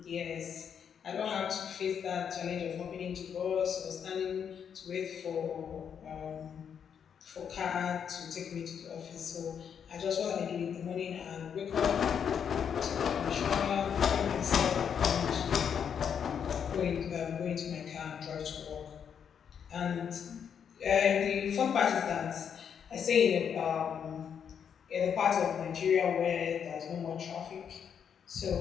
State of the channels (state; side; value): quieter; right; 7.7 dB